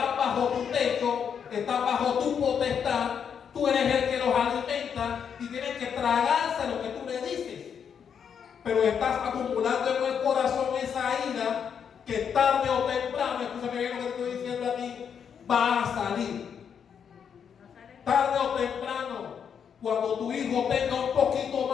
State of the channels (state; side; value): quieter; right; 7.5 dB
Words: bajo tu techo, están bajo tu potestad. Tú eres el que los alimenta y tienen que tragarse lo que tú le dices. Pero estás acumulando en el corazón esa ira que tarde o temprano, escúchame bien lo que te estoy diciendo aquí, va a salir. Tarde o temprano, cuando tu hijo tenga un poquito